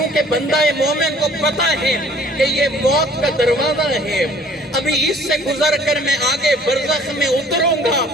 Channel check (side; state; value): both; normal; correlation 0.54